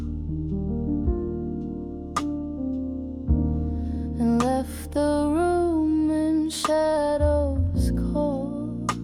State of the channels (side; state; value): both; identical; correlation 1.00